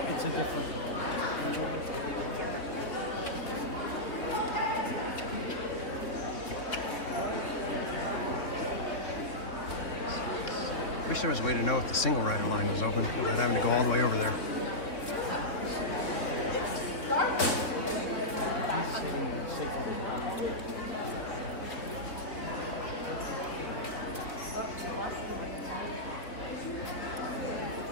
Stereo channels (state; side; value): late; right; 3.2 ms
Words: it's a different one. Wish there was a way to know if the single rider line was open without having to go all the way over there.